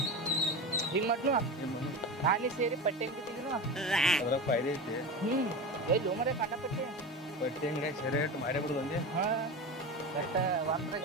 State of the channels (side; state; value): both; normal; correlation 0.26